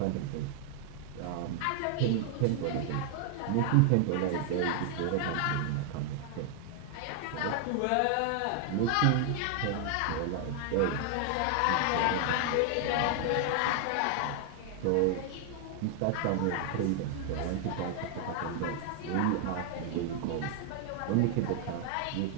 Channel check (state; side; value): different; both; correlation 0.00